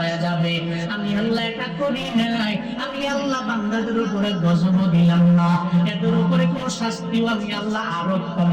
যাবে, আমি আল্লাহ এটা করি নাই। আমি আল্লাহ বান্দাদের উপরে গজব দিলাম না, এদের উপরে কোনো শাস্তিও আমি আল্লাহ আরোপ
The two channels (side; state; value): both; identical; correlation 1.00